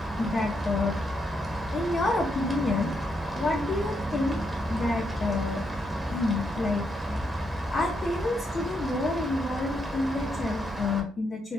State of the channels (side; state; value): both; normal; correlation 0.79